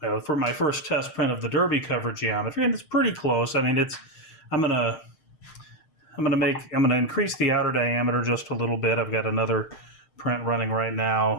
for my first test print of the derby cover geometry, and it's pretty close. I mean, I'm gonna increase the outer diameter just a little bit. I've got another print running right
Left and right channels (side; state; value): right; late; 6.5 ms